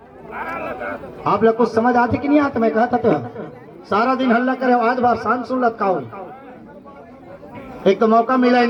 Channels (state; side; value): identical; both; correlation 1.00